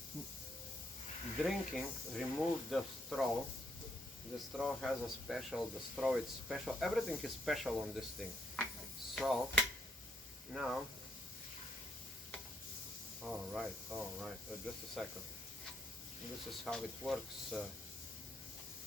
drinking. Remove the straw. The straw has a special, the straw is special, everything is special on this thing. So now, all right, just a second. This is how it works.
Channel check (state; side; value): normal; both; correlation 0.74